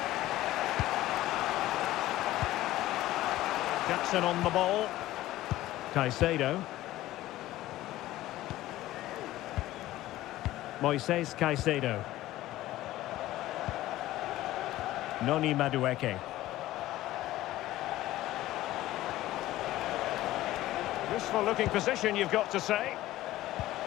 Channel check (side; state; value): right; quieter; 15.7 dB